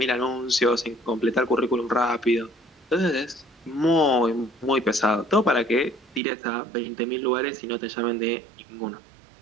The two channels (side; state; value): left; drops out; at 6.2 s